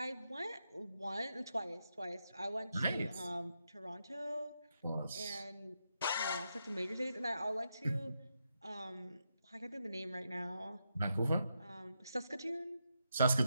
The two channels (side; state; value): both; inverted; correlation -0.84